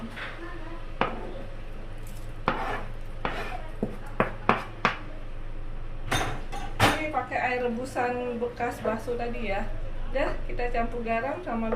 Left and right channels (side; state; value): both; identical; correlation 1.00